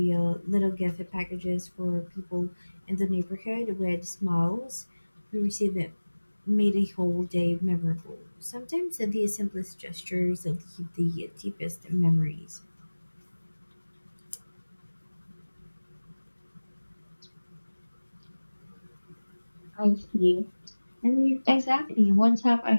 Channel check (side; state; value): both; inverted; correlation -1.00